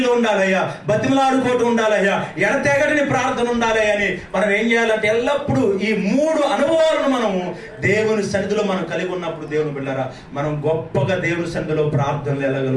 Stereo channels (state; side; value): identical; both; correlation 1.00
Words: ఉండాలయ్యా, బతిమలాడుకోవటం ఉండాలయ్యా, ఎడతెగని ప్రార్థన ఉండాలయ్యా అని మనం ఏం చేయాలంటే ఎల్లప్పుడూ ఈ 3 అనుభవాలను మనము దేవుని సన్నిధిలో మనం కలిగి ఉన్నప్పుడు దేవుని బిడ్డలారా మనం గొప్పగా దేవుని సన్నిధిలో ప్రార్థనలు